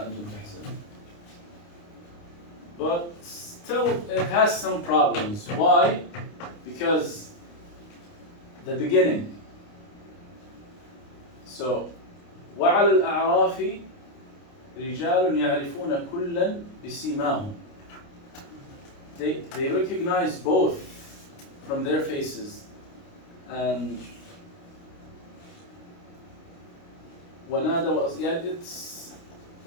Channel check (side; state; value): right; late; 29 ms